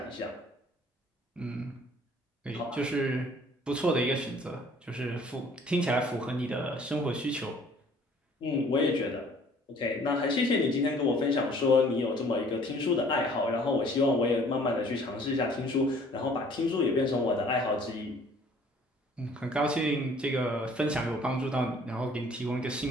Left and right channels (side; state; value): both; normal; correlation 0.55